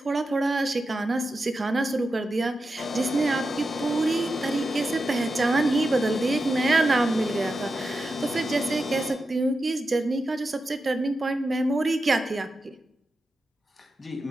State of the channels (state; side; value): normal; both; correlation 0.89